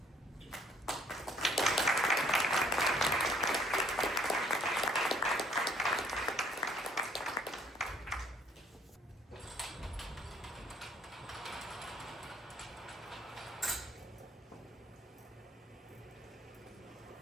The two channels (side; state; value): both; normal; correlation 0.61